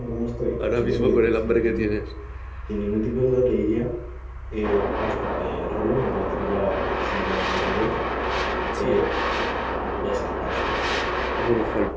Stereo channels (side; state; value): both; identical; correlation 1.00